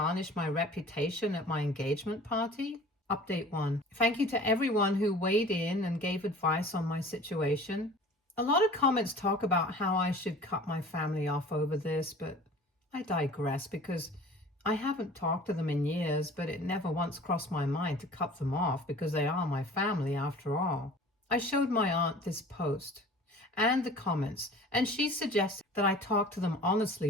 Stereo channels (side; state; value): both; normal; correlation 0.45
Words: my reputation at my engagement party? Update 1. Thank you to everyone who weighed in and gave advice on my situation. A lot of comments talk about how I should cut my family off over this, but I digress because I haven't talked to them in years, but it never once crossed my mind to cut them off because they are my family after all. I showed my aunt this post and the comments, and she suggested that I talk to them